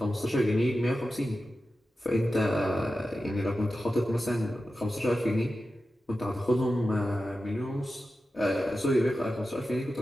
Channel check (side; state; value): both; normal; correlation 0.92